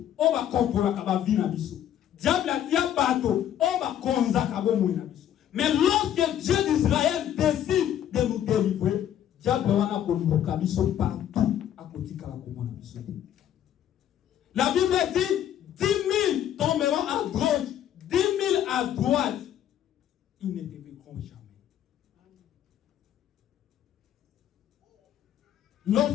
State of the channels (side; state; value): right; quieter; 10.6 dB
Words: o ba kontrola ka ba vina biso. Diable a tia bateau, o ba konza ka bo moina biso. Mais lorsque Dieu d'Israël décide de nous délivrer, diable wana koluka biso partout à côté kala komona biso. La Bible dit 10 000 tomberont à gauche, 10 000 à droite. Ils ne dévideront jamais.